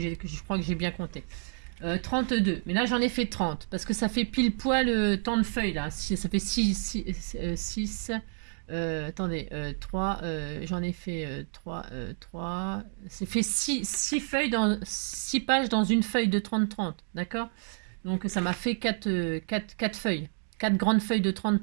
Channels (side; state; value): left; silent; digital silence